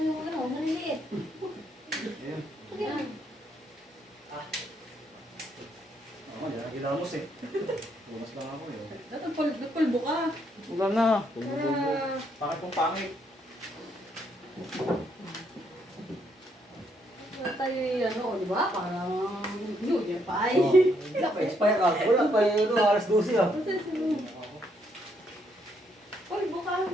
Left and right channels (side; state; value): both; normal; correlation 0.73